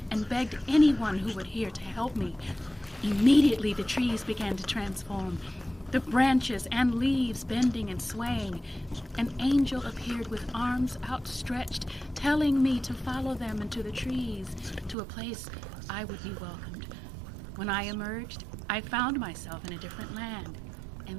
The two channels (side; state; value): left; drops out; at 15.0 s